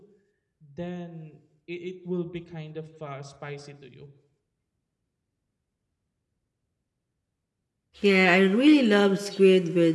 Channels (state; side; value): identical; both; correlation 1.00